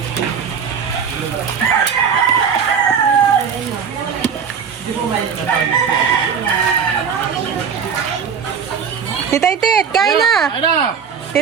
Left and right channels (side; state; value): left; quieter; 6.8 dB